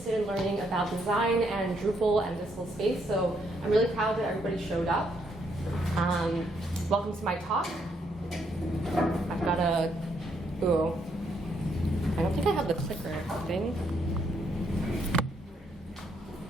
in learning about design and Drupal and digital space, so I'm really proud that everybody showed up. Welcome to my talk. I've got a, I don't think I have the clicker thing.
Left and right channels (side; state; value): both; normal; correlation 0.74